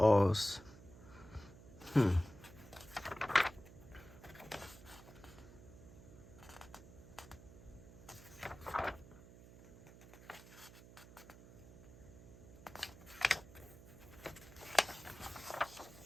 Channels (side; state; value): right; noise; hum, 18 dB below the sound